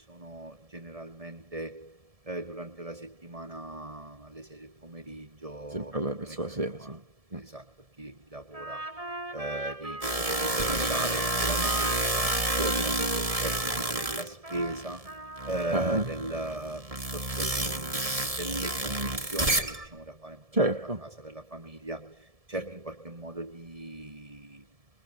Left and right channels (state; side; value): late; left; 1.7 ms